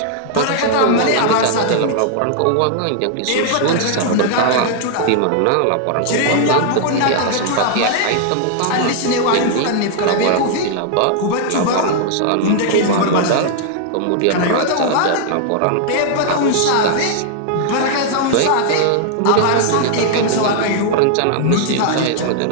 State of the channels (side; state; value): both; different; correlation 0.00